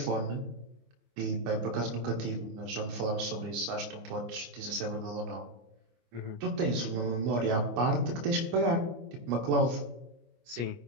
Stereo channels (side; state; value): left; late; 25 ms